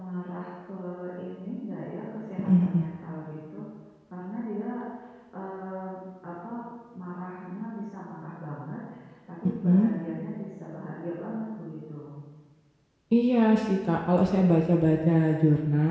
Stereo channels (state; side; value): identical; both; correlation 1.00